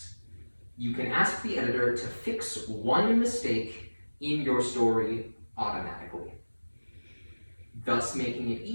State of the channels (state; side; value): inverted; both; correlation -1.00